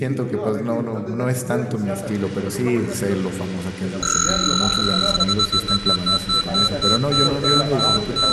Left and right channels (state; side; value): identical; both; correlation 1.00